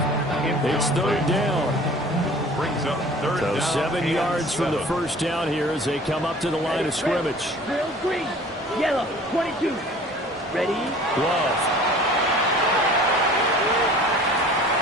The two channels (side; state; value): both; normal; correlation 0.47